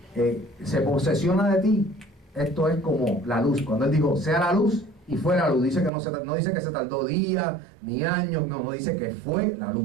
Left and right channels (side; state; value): left; drops out; at 5.9 s